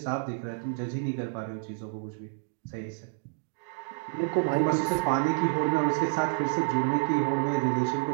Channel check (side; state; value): left; silent; digital silence